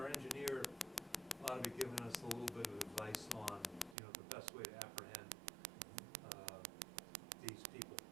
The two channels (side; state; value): left; drops out; at 4.0 s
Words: our engineer ought to be giving us a little bit of advice on, you know, the best way to apprehend these people.